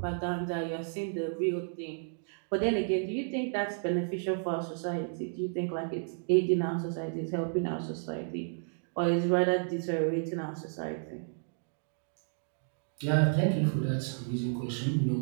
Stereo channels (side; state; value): left; silent; digital silence